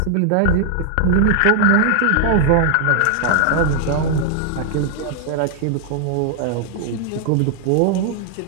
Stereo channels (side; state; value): both; different; correlation 0.00